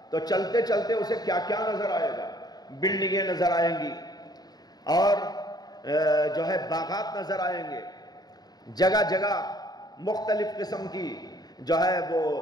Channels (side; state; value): right; late; 0.19 ms